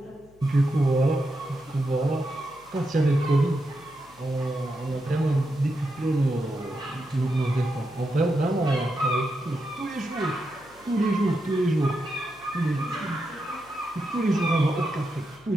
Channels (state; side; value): noise; left; hum, 28 dB below the sound